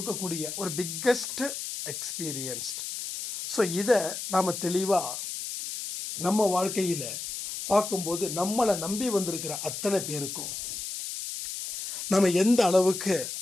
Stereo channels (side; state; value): left; noise; hiss, 6 dB below the sound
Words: ஒரு பிக்கஸ்ட் எக்ஸ்பீரியன்ஸ்ட். ஸோ இதை நாம தெளிவா நம்ம வாழ்க்கையில பார்க்கும்போது நம்மளை நம்பி வந்திருக்கிற அத்தனை பேருக்கும் நம்ம எந்த அளவுக்கு